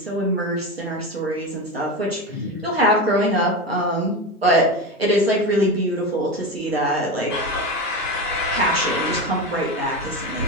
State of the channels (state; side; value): normal; both; correlation 0.21